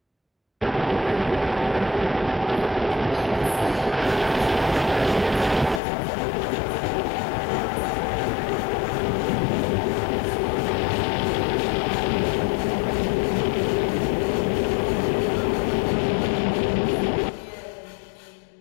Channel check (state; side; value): drops out; right; at 5.8 s